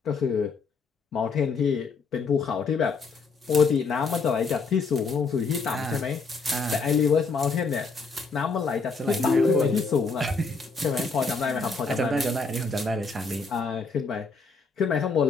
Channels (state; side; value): quieter; right; 4.4 dB